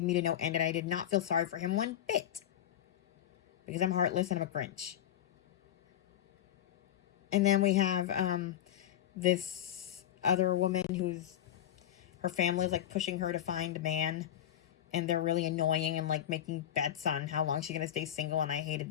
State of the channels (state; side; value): quieter; right; 11.1 dB